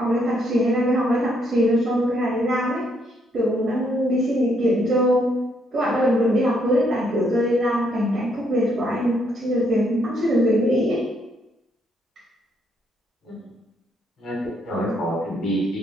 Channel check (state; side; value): normal; both; correlation 0.73